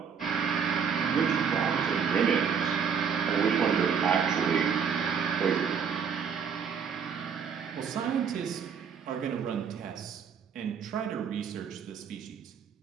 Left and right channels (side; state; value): left; quieter; 6.9 dB